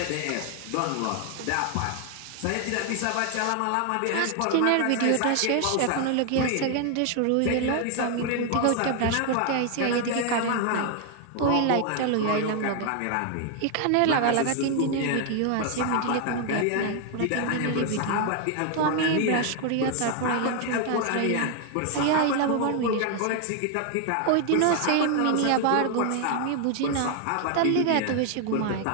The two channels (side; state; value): both; different; correlation 0.00